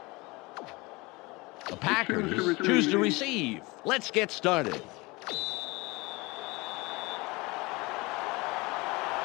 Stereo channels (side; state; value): right; quieter; 24.1 dB